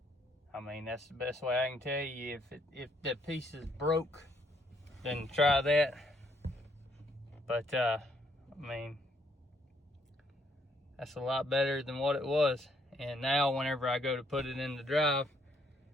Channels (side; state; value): both; normal; correlation 0.70